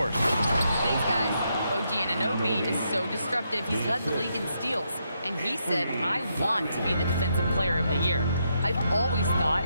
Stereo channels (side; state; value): both; inverted; correlation -0.79